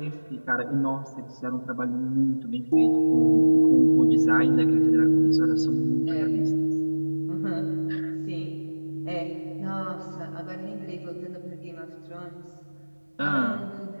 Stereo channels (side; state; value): both; inverted; correlation -1.00